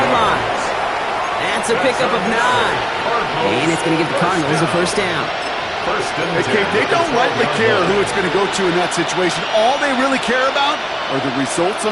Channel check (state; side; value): identical; both; correlation 1.00